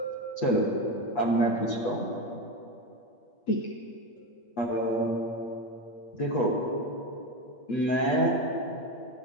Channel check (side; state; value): right; late; 8.4 ms